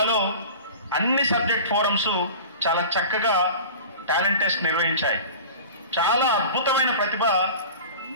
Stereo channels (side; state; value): both; inverted; correlation -0.37